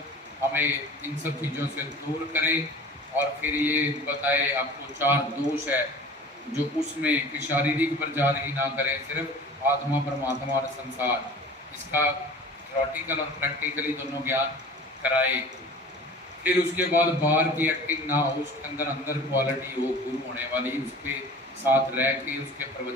हमें इन सब चीज़ों से दूर करें। और फिर ये बताए आपको 4 दोष है जो उसमें कि शारीरिक प्रचार ही ना करें, सिर्फ आत्मा, परमात्मा और संसार, इसका थ्योरेटिकल और प्रैक्टिकली दोनों ज्ञान कराए। फिर उसके बाद बाहर की एक्टिंग ना हो, उसके अंदर अंदर क्वालिटी हो गुरु होने वाली, उसके साथ रह के उसके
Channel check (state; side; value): normal; both; correlation 0.41